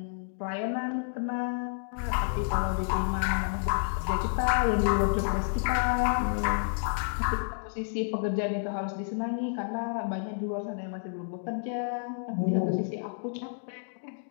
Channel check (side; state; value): right; silent; digital silence